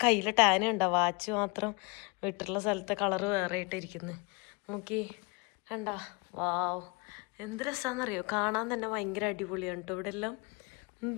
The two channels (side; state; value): right; quieter; 29.6 dB